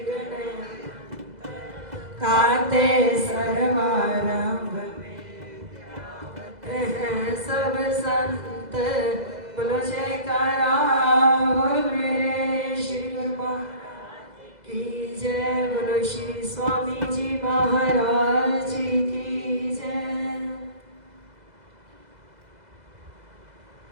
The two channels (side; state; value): left; late; 2.0 ms